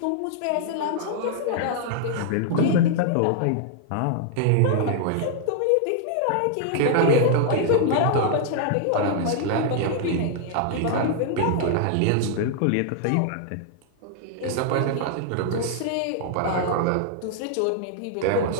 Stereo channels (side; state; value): both; different; correlation -0.01